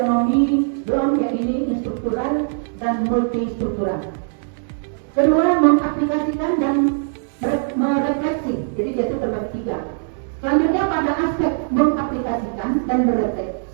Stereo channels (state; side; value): silent; left; digital silence